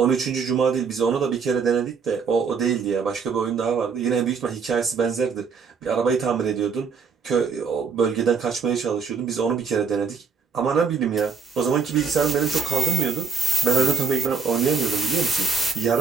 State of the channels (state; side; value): quieter; left; 5.6 dB